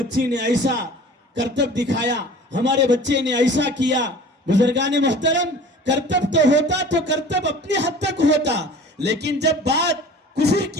نے ایسا کرتب دکھایا, ہمارے بچے نے ایسا کیا. بزرگان محترم, کرتب تو ہوتا تو کرتب اپنی حد تک ہوتا, لیکن جب بات کفر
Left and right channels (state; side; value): normal; both; correlation 0.43